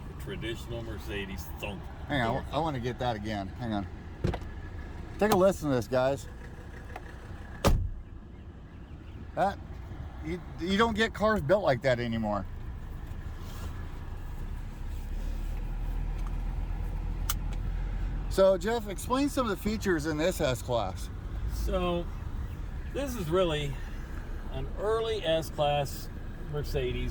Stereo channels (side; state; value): both; identical; correlation 1.00